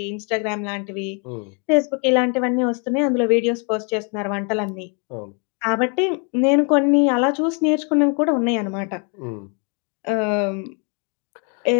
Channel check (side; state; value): right; quieter; 36.8 dB